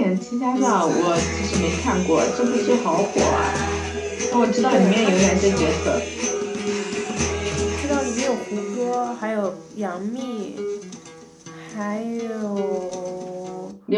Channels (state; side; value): identical; both; correlation 1.00